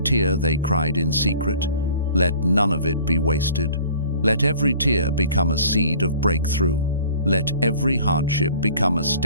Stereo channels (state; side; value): inverted; both; correlation -0.49